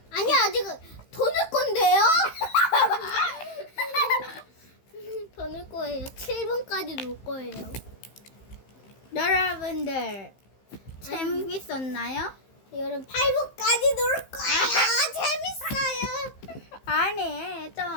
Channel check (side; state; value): right; late; 15 ms